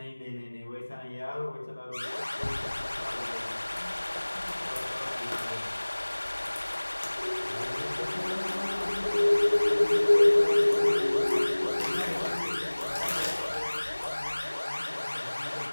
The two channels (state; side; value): inverted; both; correlation -1.00